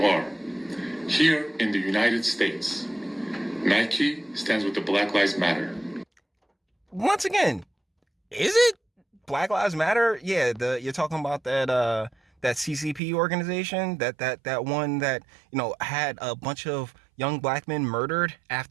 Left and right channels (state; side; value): drops out; left; at 13.0 s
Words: are. Here in the United States, Nike stands with the Black Lives Matter. Once again, is it Black Lives Matter? Yeah, you're talking about that CCP organization, that one that had a bunch of young black men murdered